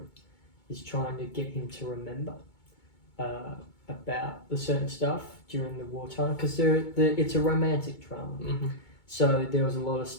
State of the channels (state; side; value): late; right; 2.2 ms